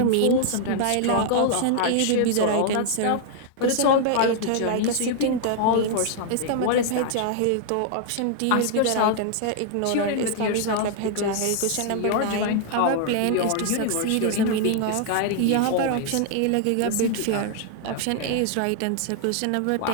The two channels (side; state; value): both; different; correlation 0.00